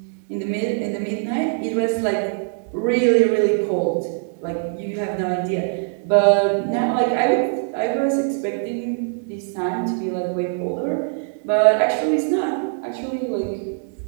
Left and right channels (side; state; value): left; silent; 64 dB below the other